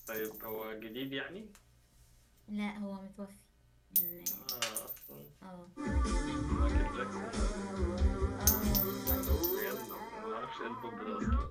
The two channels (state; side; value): identical; both; correlation 1.00